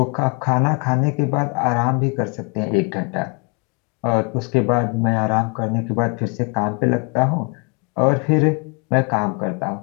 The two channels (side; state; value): right; quieter; 33.4 dB